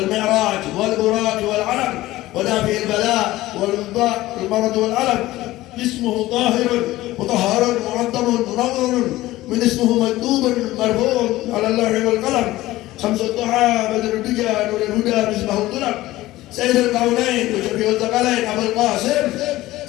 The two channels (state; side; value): quieter; right; 17.0 dB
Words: mi'raj wal buraq wal alam wa dafi'il bala wal mudda' wal marad wal alam. اسمه طاهر مطهر معظم منور من اسمه مكتوب مرفوع على اللوح والقلم شمس الضحى بدر الدجى نور الهدى مصباح الظلم سيد الكونين وشفيع الثقلين ابو القاسم